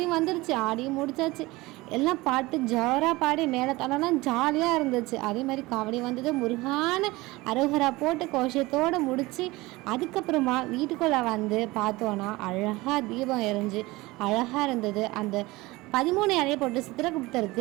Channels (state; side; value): quieter; left; 20.9 dB